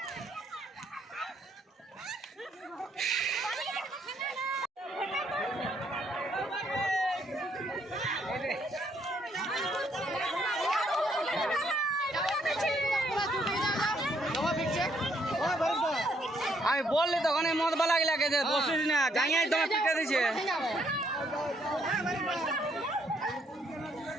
আমি বললি তখন এই মদ বালা লাগে যে বসিস না গাঁয়াই তোমার পিটে দিছে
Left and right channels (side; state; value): both; normal; correlation 0.71